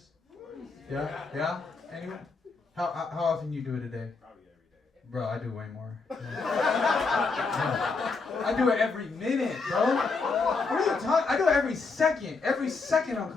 Yeah? Anyone? How often you do it a day? Probably every day. Bro, I do way more. I do it every minute, bro. What are you talking? I do it every second. Every second I'm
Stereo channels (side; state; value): right; quieter; 4.3 dB